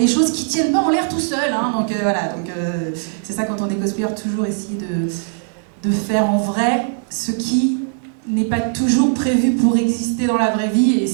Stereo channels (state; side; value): silent; left; digital silence